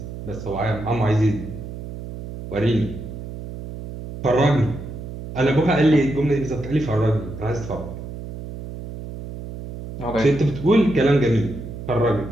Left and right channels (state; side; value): noise; right; hum, 10 dB below the sound